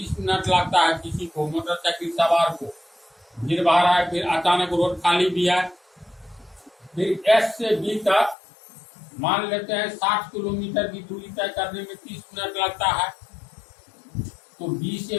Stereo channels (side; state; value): right; drops out; at 8.3 s